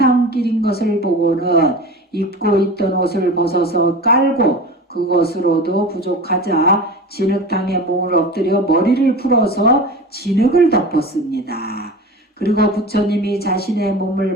것을 보고는 입고 있던 옷을 벗어서 깔고 그것으로도 부족하자 진흙탕에 몸을 엎드려 머리를 풀어서 진흙을 덮었습니다. 그리고 부처님이 자신의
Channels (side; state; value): both; normal; correlation 0.32